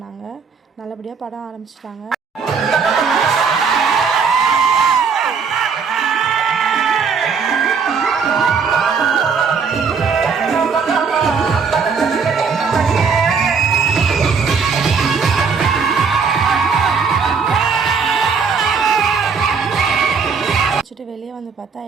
நல்லபடியாக படம் ஆரம்பிச்சிட்டாங்க. வெளியே வந்து பார்த்தா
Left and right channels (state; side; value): quieter; left; 5.6 dB